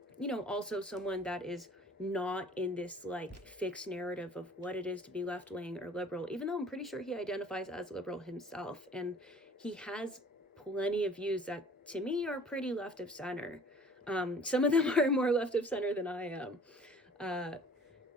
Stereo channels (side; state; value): both; normal; correlation 0.50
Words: you know, also someone that is not in this like fixed narrative of what it is to be left-wing or liberal, even though I'm pretty sure he identifies as liberal himself. And he has plenty of views that to me are pretty left of center. Some of them are more left of center than I am.